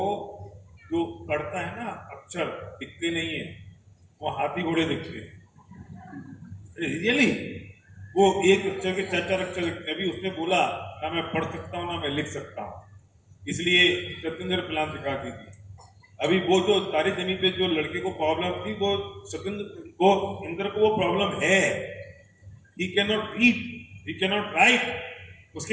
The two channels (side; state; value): both; identical; correlation 1.00